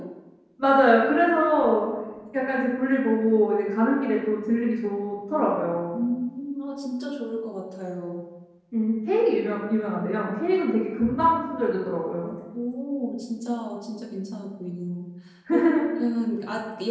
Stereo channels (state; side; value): identical; both; correlation 1.00